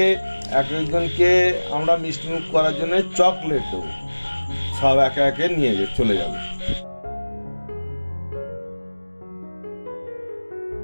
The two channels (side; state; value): both; inverted; correlation -1.00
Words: একজনকে আমরা মিষ্টিমুখ করার জন্য চকলেট দেবো, সব একে একে নিয়ে চলে যাবে।